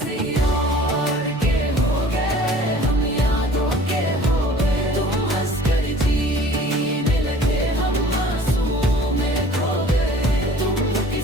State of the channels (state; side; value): normal; both; correlation 0.49